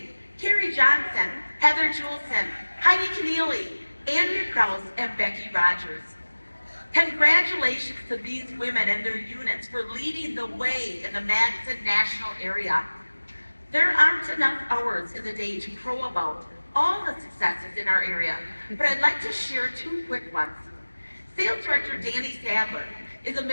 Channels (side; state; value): both; inverted; correlation -1.00